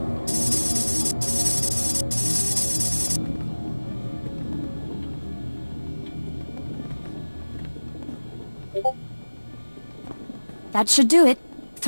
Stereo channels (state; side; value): inverted; both; correlation -1.00